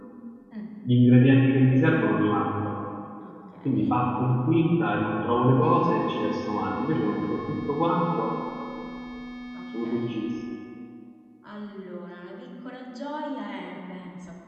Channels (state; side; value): identical; both; correlation 1.00